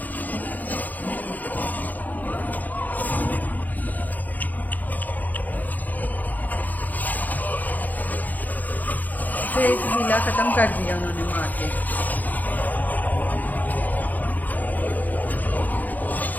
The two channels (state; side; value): late; right; 0.082 ms